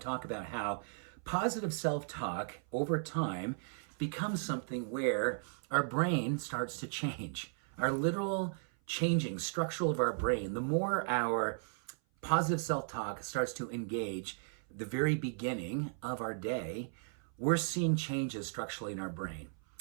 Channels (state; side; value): silent; left; 54 dB below the other